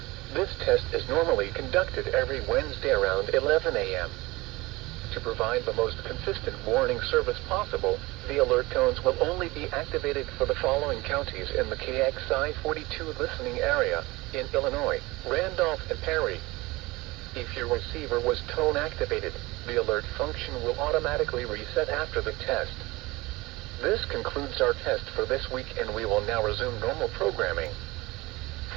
this test is normally conducted every Wednesday around 11 a.m. To provide the most consistent warning service possible, the alert tones will only be activated for the following counties in the KXI42 listening area in Illinois, Randolph, and Perry. If your receiver was tone activated, the alert function will automatically reset after the test. This concludes our test for this week, and we will now resume normal programming.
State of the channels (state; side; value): quieter; left; 21.6 dB